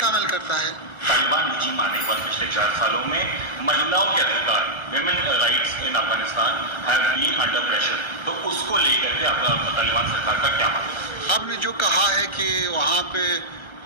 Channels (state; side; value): late; right; 1.4 ms